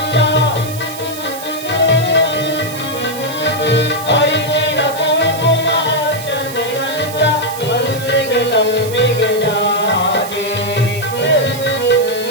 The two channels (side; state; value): right; noise; hiss, 13 dB below the sound